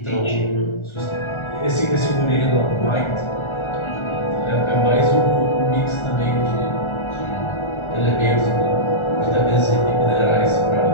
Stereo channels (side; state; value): right; late; 1.4 ms